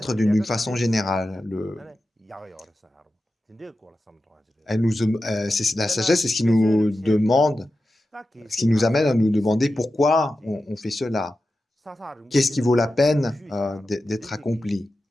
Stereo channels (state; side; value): normal; both; correlation 0.92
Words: d'une façon générale. La sagesse, c'est ce qui nous demande, ce qui nous amène à nous demander pourquoi on fait cela. Qu'est-ce qui vaut la peine d'être accompli?